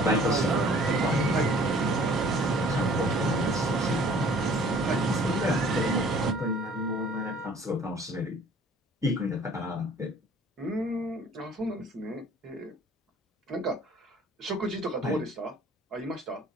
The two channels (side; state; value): both; normal; correlation 0.53